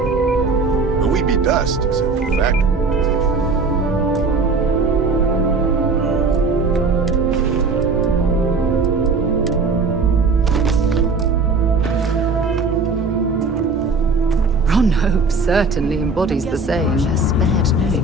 But we'd be dust, except for the factory. Ron Hope certainly embodies the saying, spared no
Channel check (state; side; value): quieter; left; 3.9 dB